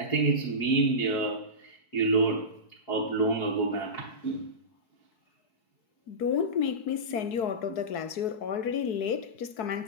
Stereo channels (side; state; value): right; late; 4.6 ms